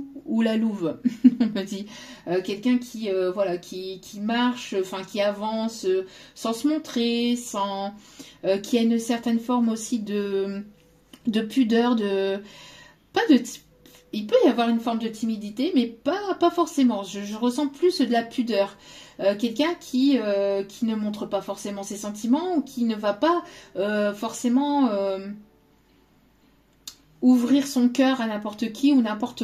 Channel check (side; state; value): both; identical; correlation 1.00